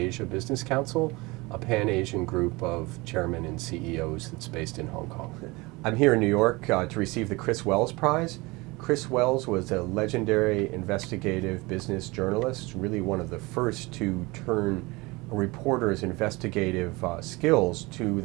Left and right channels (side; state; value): left; quieter; 23.8 dB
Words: Business Council, a pan-Asian group of chairmen and CEOs that's based in Hong Kong. I'm here in New York to receive the Chris Wells Prize. Chris Wells was a legendary investigative business journalist, really one of the first to turn a reporter's investigative skills to